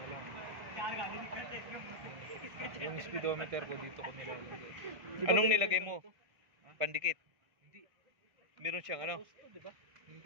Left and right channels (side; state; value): left; late; 1.6 ms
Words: lang. Yung speedometer ko dito ko nilalagay. Anong nilagay mo? Pandikit. Hindi. Meron siyang ano? Diba?